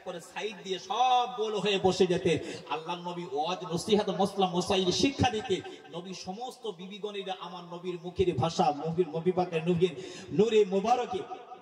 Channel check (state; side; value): identical; both; correlation 1.00